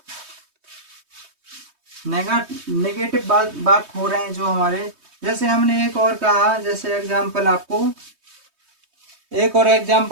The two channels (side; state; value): left; late; 3.2 ms